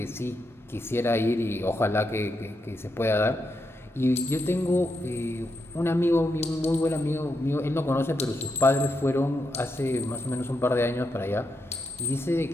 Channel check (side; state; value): both; normal; correlation 0.84